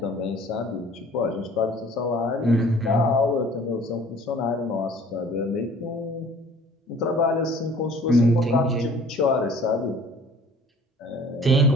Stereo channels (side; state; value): both; normal; correlation 0.50